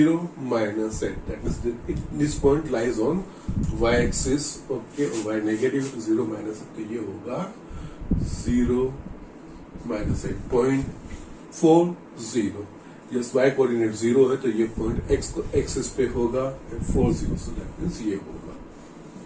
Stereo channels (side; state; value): both; identical; correlation 1.00